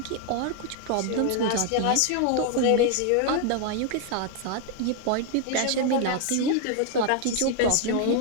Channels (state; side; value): different; both; correlation 0.00